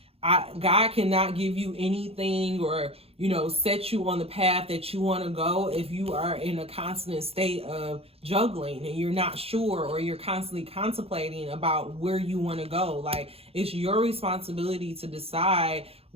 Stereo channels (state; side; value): late; left; 0.29 ms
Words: God cannot give you anything or set you on the path that you want to go if you are in a constant state of juggling and you're not sure, or you're constantly contemplating about where you want to go. Like it's your responsibility to decide